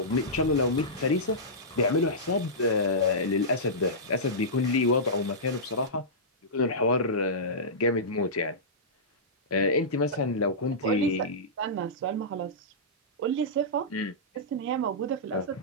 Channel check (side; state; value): both; normal; correlation -0.16